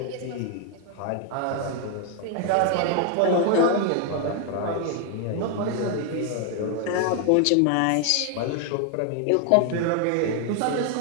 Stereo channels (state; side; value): different; both; correlation 0.00